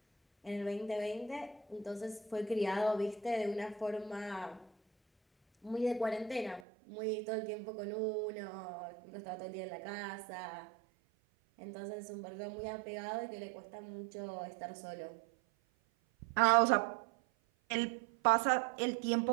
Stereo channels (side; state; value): left; drops out; at 6.6 s